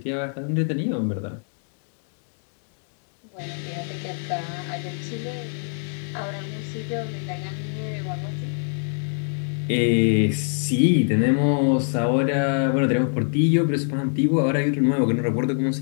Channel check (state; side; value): silent; right; 62 dB below the other